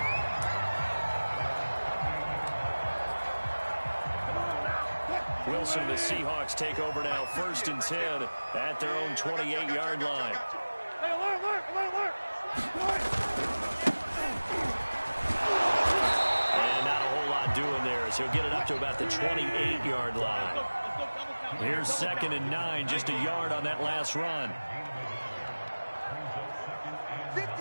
Wilson, the Seahawks take over now, 1st and 10 at their own 28-yard line. And not a whole lot doing there as he'll get it up to about the 28-yard line. Here's 2nd and 9, just a yard on that last run.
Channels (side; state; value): both; inverted; correlation -1.00